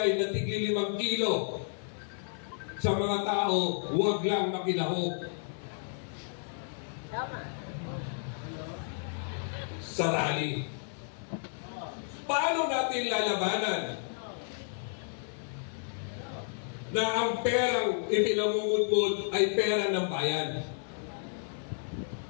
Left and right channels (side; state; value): right; silent; digital silence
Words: na tigli 5 kilo sa mga tao, huwag lang makinahog. Sa rally. Paano natin lalabanan? na ang perang ipinamumudmod ay pera ng bayan.